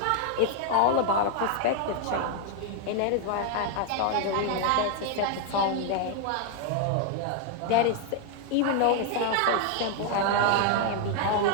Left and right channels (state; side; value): different; both; correlation 0.00